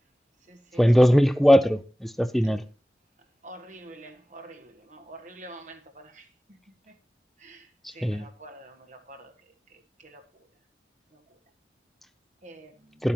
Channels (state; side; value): normal; both; correlation 0.97